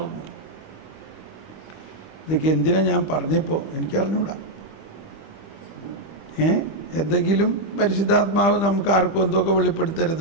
ഇതൊക്കെ എന്തിനാ ഞാൻ പറഞ്ഞപ്പോൾ എനിക്കറിഞ്ഞൂടാ. എന്തെങ്കിലും പരിശുദ്ധാത്മാവ് നമുക്ക് ആർക്കും എന്തൊക്കെ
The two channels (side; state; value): right; late; 25 ms